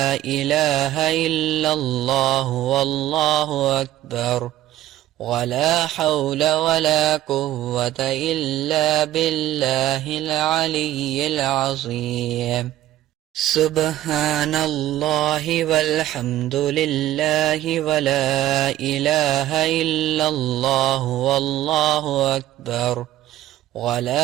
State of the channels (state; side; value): quieter; left; 13.9 dB